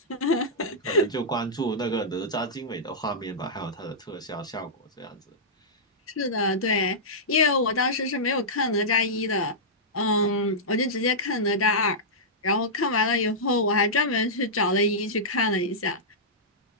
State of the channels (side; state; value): both; normal; correlation -0.13